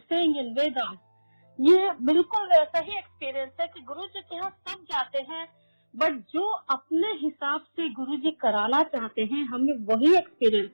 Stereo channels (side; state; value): both; inverted; correlation -1.00